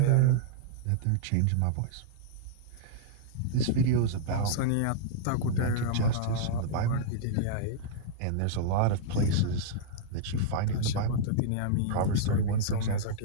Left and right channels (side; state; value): both; different; correlation -0.02